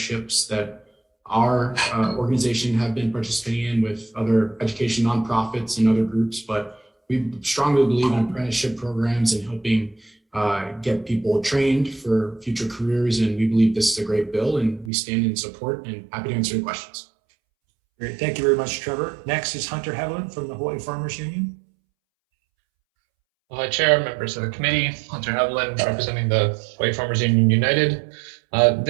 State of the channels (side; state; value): left; drops out; at 14.9 s